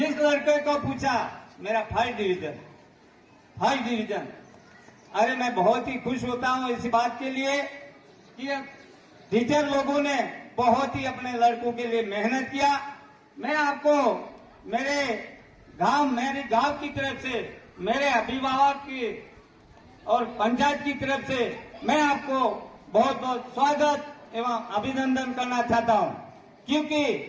लड़के को पूछा मेरा फर्स्ट डिवीजन, अरे मैं बहुत ही खुश होता हूं इस बात के लिए कि टीचर लोगों ने बहुत ही अपने लड़कों के लिए मेहनत किया। मैं आपको मेरे गांव की तरफ से, मेरे अभिभावक की और पंचायत की तरफ से मैं आपको बहुत बहुत स्वागत एवं अभिनंदन करना चाहता हूं, क्योंकि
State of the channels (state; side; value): identical; both; correlation 1.00